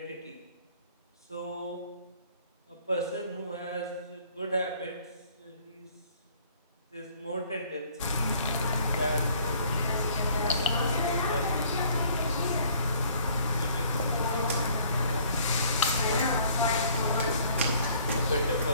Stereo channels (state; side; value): inverted; both; correlation -0.58